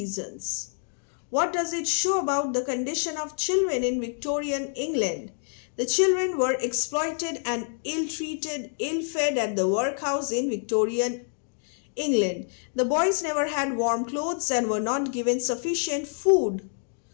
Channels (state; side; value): silent; right; 60 dB below the other